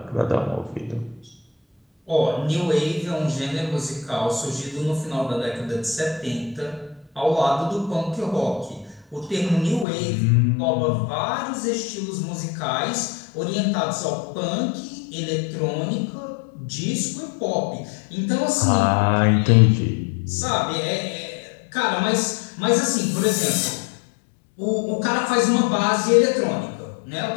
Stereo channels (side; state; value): right; drops out; at 9.9 s